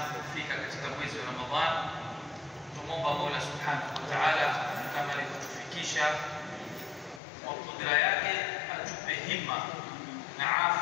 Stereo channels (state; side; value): drops out; right; at 7.2 s